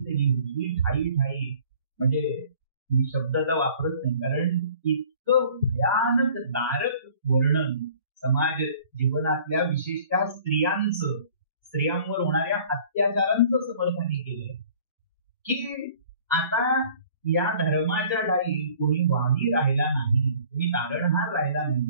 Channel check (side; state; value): both; inverted; correlation -0.52